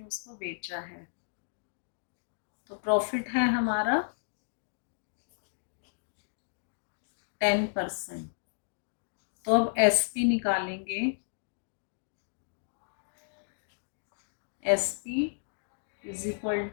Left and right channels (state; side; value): silent; right; digital silence